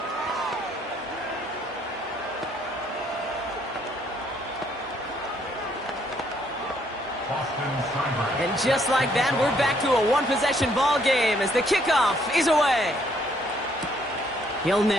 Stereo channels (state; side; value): normal; both; correlation 0.68